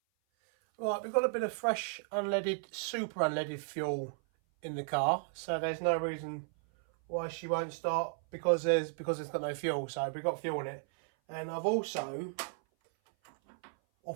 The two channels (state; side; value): silent; left; 55 dB below the other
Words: Right, we've got a bit of fresh unleaded, super unleaded fuel in the car, so there's no reason why she won't start because it's got no fuel. So we've got fuel in it. And I've also,